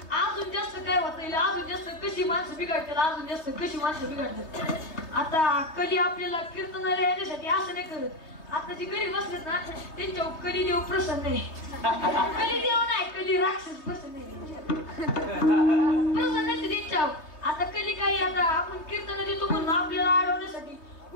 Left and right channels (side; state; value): right; late; 3.2 ms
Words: अजून जास्त काय होत येईल, अजून जास्त कशी माणसं बिघडतात, अजून जास्त कशी माणसं बिघडतात. आता कली आपल्याला कीर्तनाला येण्यासाठी असं नाही करत. आता जे गरीब असतात ना त्यांच्यावर कली देव प्रसन्न आहे. कली देव नाही, कली राक्षस प्रसन्न आहे त्यांच्यावर. आता कली काही आता आपण कीर्तन देतो म्हणून आपल्याला अडवण्यासाठी